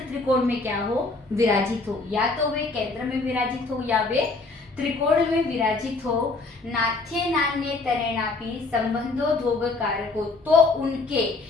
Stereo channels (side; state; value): right; quieter; 3.6 dB